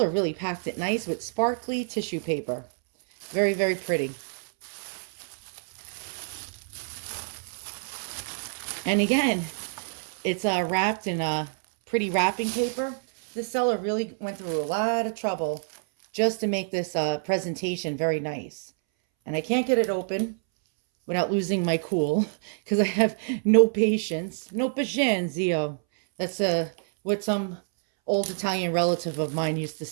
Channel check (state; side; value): silent; left; 60 dB below the other